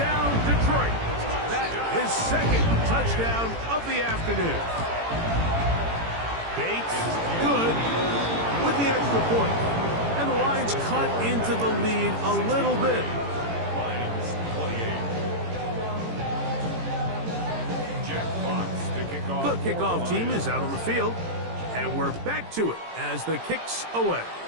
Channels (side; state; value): left; late; 18 ms